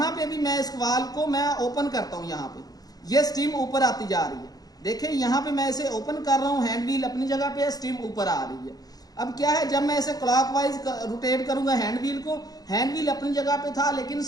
पे भी मैं इस वाल्व को मैं ओपन करता हूँ। यहाँ पे ये स्टीम ऊपर आती जा रही है। देखें, यहाँ पे मैं इसे ओपन कर रहा हूँ, हैंड व्हील अपनी जगह पे है, स्टीम ऊपर आ रही है। अब क्या है, जब मैं इसे क्लॉकवाइज रोटेट करूंगा हैंड व्हील को, हैंड व्हील अपनी जगह पे था लेकिन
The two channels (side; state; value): right; late; 0.18 ms